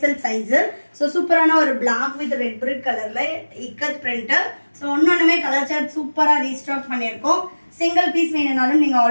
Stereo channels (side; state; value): both; inverted; correlation -1.00